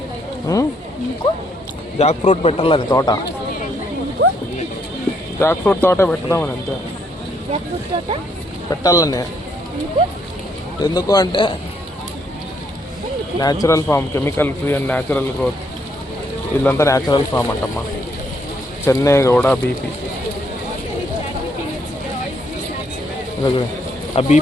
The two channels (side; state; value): both; normal; correlation 0.72